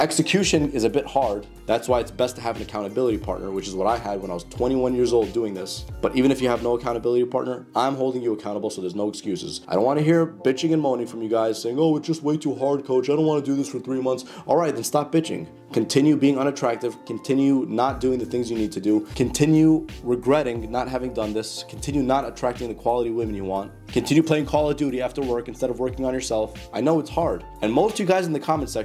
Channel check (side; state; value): both; identical; correlation 1.00